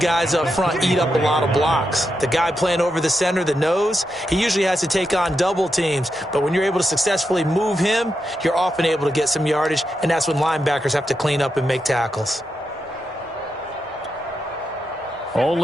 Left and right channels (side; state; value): both; normal; correlation 0.85